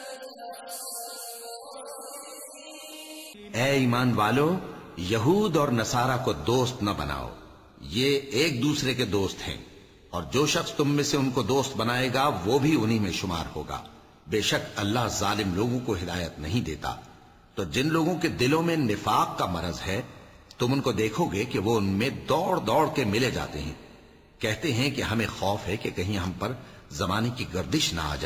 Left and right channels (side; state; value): both; identical; correlation 1.00